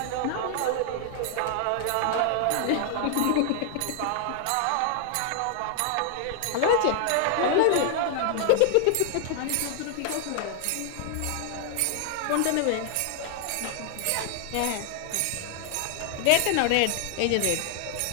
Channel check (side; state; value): both; different; correlation 0.00